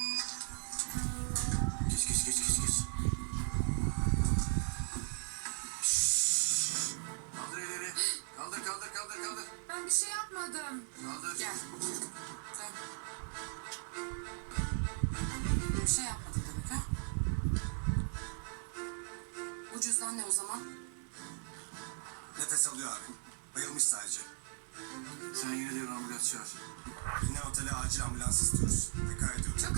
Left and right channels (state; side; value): silent; left; 53 dB below the other